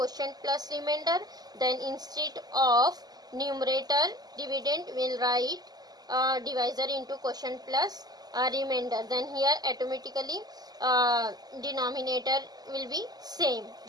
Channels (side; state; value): left; late; 0.19 ms